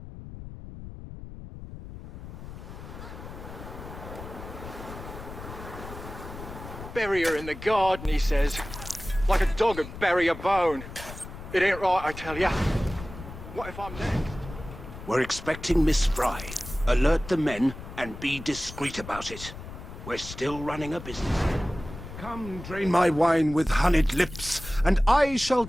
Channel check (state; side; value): noise; left; rumble, 12 dB below the sound